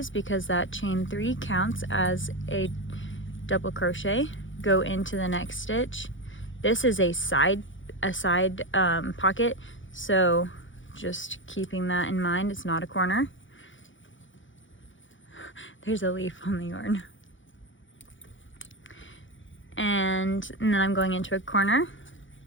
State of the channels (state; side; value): late; right; 0.56 ms